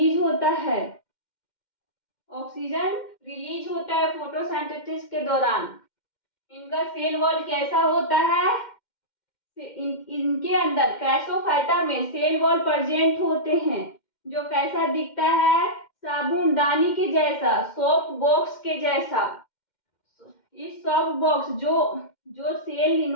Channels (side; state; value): right; late; 2.1 ms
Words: होता है। ऑक्सीजन रिलीज होता है फोटोसिंथेसिस के दौरान। इनका सेल वॉल कैसा होता है? इनके अंदर क्राइसोफाइटा में सेल वॉल प्रेजेंट होते हैं, जो कैसा दिखता है? साबुनदानी के जैसा, सोप बॉक्स के जैसा। इस सोप बॉक्स जो सेल